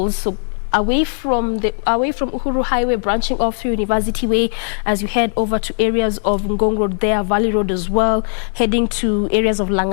So away from Uhuru Highway, branching off through University Way, as you head over to areas of Ngong Road there, Valley Road as well, heading to areas of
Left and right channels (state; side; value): silent; right; 67 dB below the other